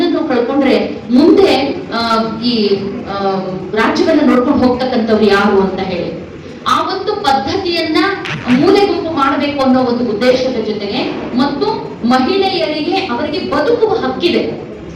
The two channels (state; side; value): identical; both; correlation 1.00